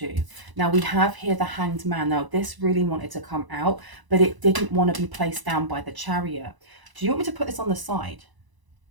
Now we have here the Hanged Man. Now this really wanted to come out, but it didn't want to be placed down by the Chariot. Do you want me to put this on the side?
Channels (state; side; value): late; left; 1.0 ms